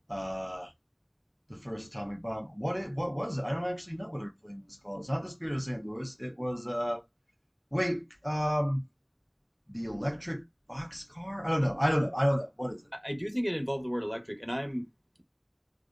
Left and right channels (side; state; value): both; identical; correlation 1.00